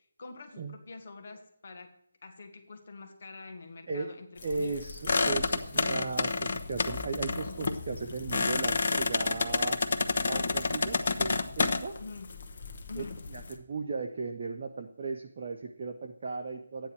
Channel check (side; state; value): both; inverted; correlation -0.85